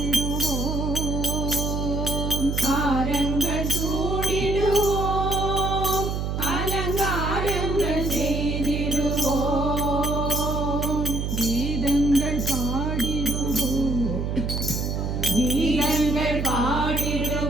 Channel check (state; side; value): noise; right; hum, 1 dB below the sound